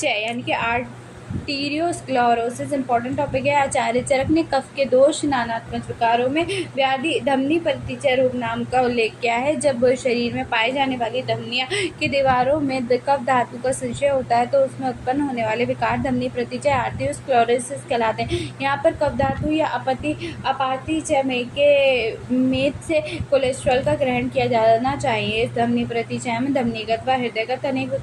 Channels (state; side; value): identical; both; correlation 1.00